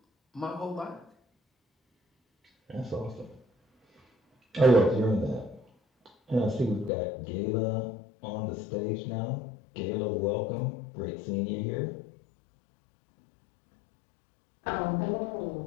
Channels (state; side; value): drops out; right; at 6.9 s